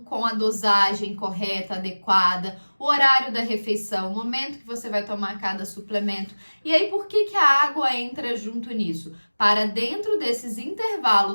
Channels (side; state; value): both; inverted; correlation -1.00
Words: a dosagem correta, adequada, o horário da refeição, o momento que você vai tomar cada suplemento. E aí, por que a água entra junto nisso? Para dentro desses